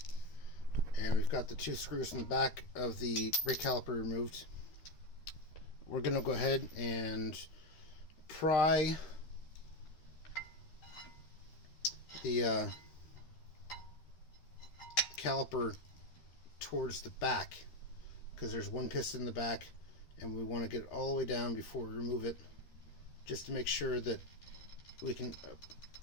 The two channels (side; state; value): right; late; 13 ms